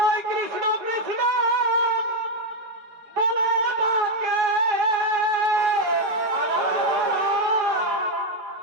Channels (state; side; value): late; left; 4.8 ms